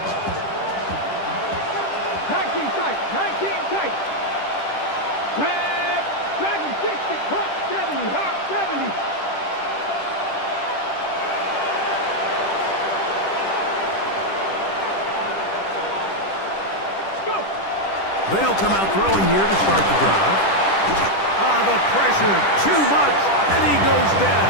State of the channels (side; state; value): right; late; 10 ms